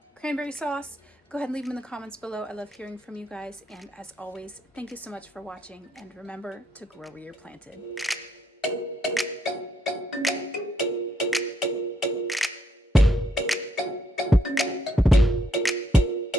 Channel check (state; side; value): normal; both; correlation 0.73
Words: sauce, go ahead and leave them in the comments below. I love hearing from you guys. And as always, thank you so much for watching. And remember to grow where you're planted.